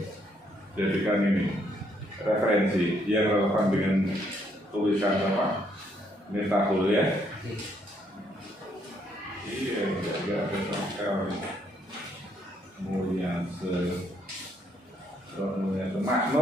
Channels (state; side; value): normal; both; correlation 0.71